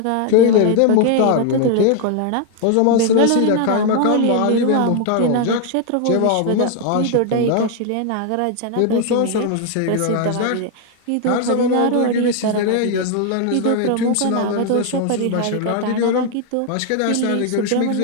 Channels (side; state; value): both; different; correlation 0.00